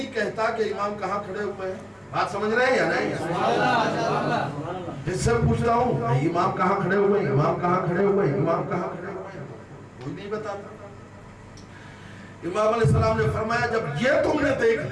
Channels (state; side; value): identical; both; correlation 1.00